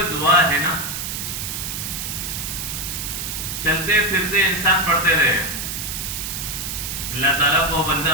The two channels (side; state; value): right; noise; hiss, 4 dB below the sound